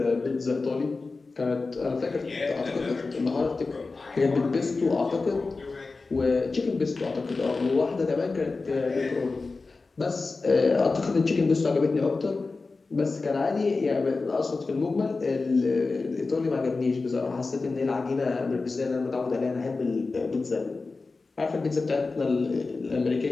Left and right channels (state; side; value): quieter; right; 3.9 dB